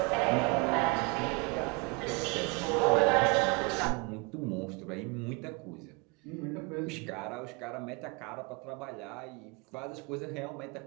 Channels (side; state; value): left; quieter; 29.8 dB